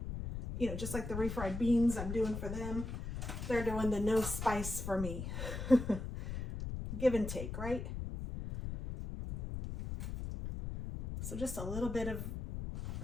you know, just like the refried beans I'm doing for them, they're doing the no spice for me. Give and take, right? So just a little bit of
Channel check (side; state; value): left; noise; rumble, 5 dB below the sound